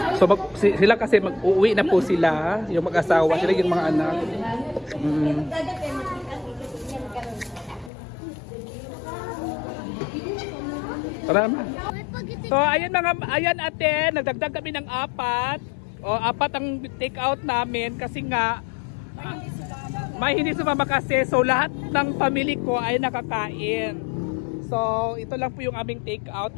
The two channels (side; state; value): right; drops out; at 7.9 s